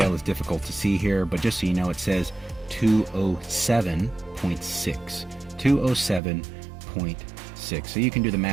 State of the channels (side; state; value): left; drops out; at 6.2 s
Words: is difficult to see here, but just so you know, it says 207.6. 207.6. So you can do the